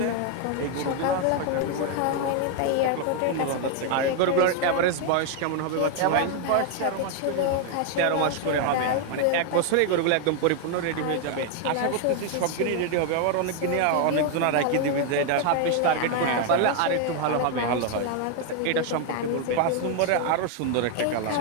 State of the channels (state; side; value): different; both; correlation 0.00